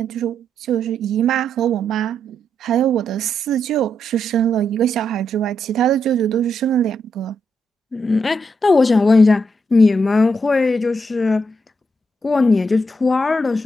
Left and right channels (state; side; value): normal; both; correlation 0.80